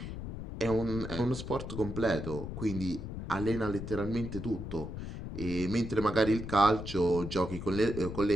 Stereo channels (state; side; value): noise; left; rumble, 7 dB below the sound